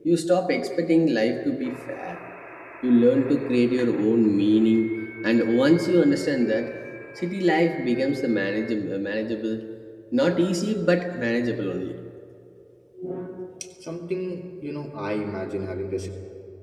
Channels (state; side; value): identical; both; correlation 1.00